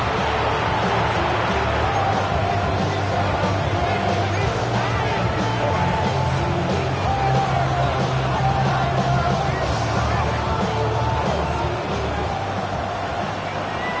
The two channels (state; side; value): identical; both; correlation 1.00